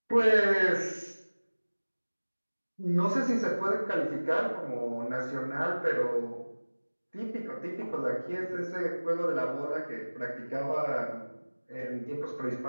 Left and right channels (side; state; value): both; inverted; correlation -1.00